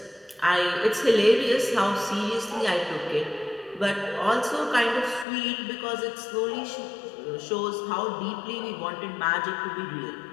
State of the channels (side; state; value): right; drops out; at 5.2 s